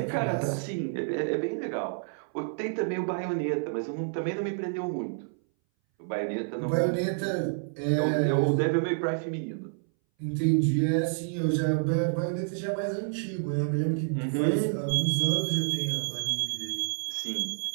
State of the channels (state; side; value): silent; left; 59 dB below the other